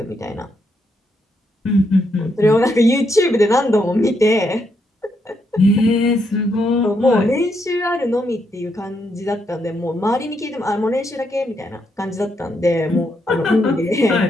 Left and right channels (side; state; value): both; normal; correlation 0.78